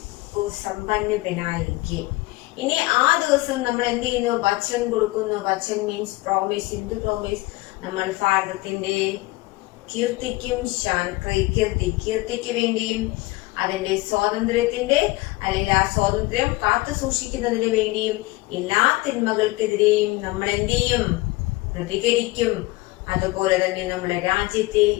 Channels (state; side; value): quieter; right; 21.1 dB